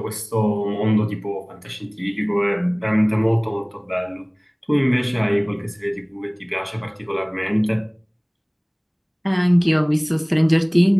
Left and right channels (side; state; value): both; identical; correlation 1.00